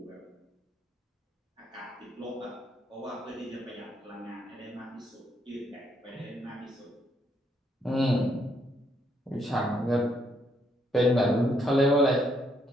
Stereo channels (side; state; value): both; normal; correlation 0.73